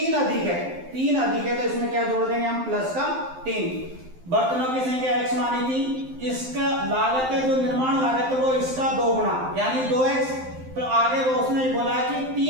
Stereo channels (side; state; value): left; late; 12 ms